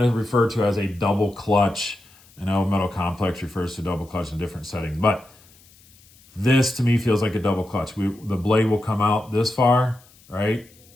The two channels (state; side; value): noise; left; hiss, 27 dB below the sound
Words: to refer to as a double clutch. I know Metal Complex refers to double clutch in different settings, but This to me feels like a double clutch. The blade will come out this far, right?